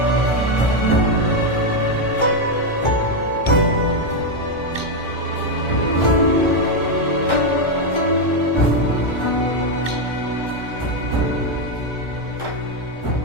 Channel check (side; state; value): right; late; 1.4 ms